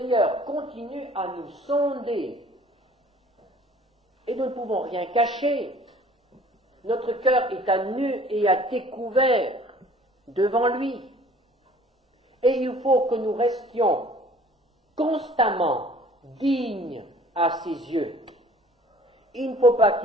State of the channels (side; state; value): both; normal; correlation 0.52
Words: continue à nous sonder et nous ne pouvons rien cacher. Notre cœur est à nu et à découvert devant lui. Et il faut que nous restions constamment dignes à ses yeux. Il ne faut pas